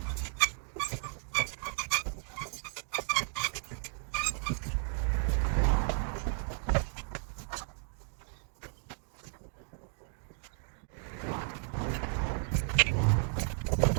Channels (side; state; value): left; silent; 55 dB below the other